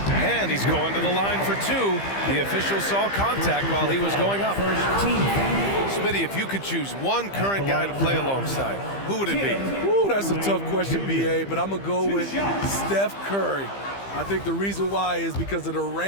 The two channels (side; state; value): right; late; 15 ms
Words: And he's going to the line for 2. The official saw contact while he was going up. Smitty, if you could choose one current guy to play alongside, who would it be? Ooh, that's a tough question, BA, but I'm going to go with Steph Curry. I think the reason why is because of the